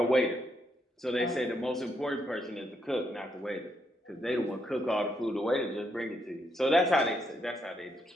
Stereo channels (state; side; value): normal; both; correlation 0.77